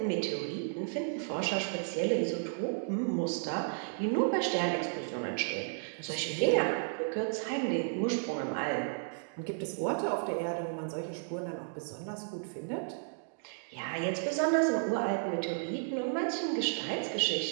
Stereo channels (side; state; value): left; silent; digital silence